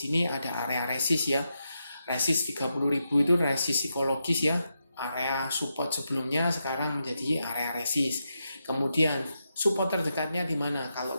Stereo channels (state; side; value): inverted; both; correlation -0.85